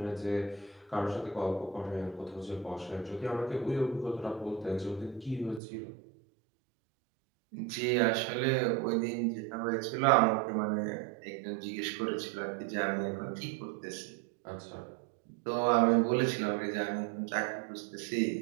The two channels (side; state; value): left; drops out; at 5.6 s